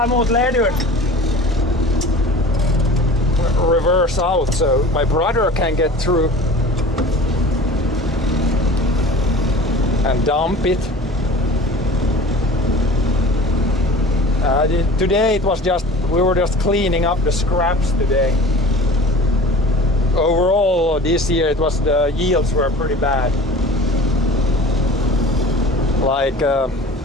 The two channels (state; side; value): normal; both; correlation 0.41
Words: emot ledut. Reverse out so my brother can get through. And dump it. Today we were just cleaning up the scraps today. Overall this year the yields were pretty bad. Like